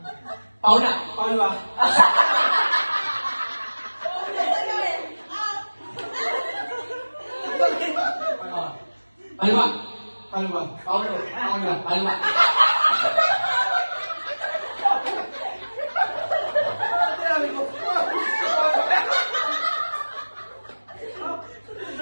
Paula. Palwa. Palwa. Palwa. Paulo. Palwa.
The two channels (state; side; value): inverted; both; correlation -1.00